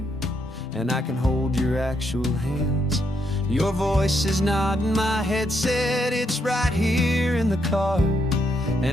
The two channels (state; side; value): normal; both; correlation 0.77